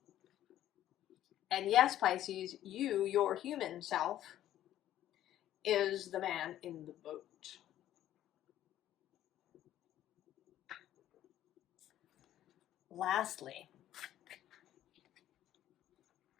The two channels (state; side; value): quieter; right; 12.4 dB